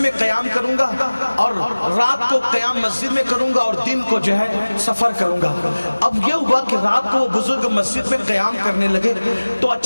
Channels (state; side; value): inverted; both; correlation -1.00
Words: क़याम करूंगा और रात को क़याम मस्जिद में करूंगा और दिन को जो है सफर करूंगा। अब ये हुआ कि रात को वो बुजुर्ग मस्जिद में क़याम करने लगे तो